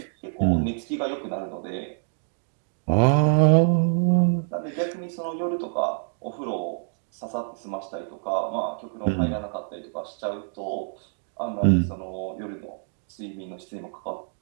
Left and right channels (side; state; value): left; silent; digital silence